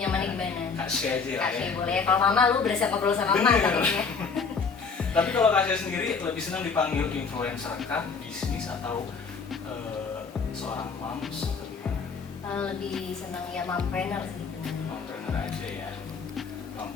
nyamannya gimana. Kak Shay aja Kak ya. Shay boleh. Kalau Mama lu berasa ngobrol sama Mama katanya. Tapi kalau Kak Shay sendiri lebih senang dipanggil influencer kah, bisnis atau seorang moms atau gimana? Lebih senang ya mompreneur sih. Mompreneur aja ya.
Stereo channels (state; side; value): quieter; right; 5.2 dB